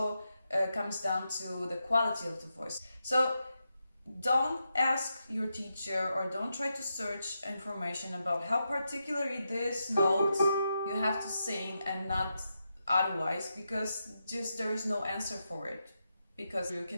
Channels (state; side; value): inverted; both; correlation -0.86